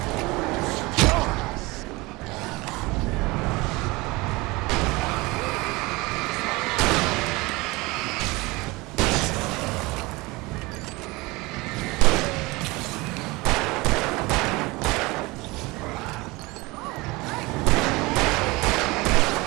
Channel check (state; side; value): quieter; left; 23.1 dB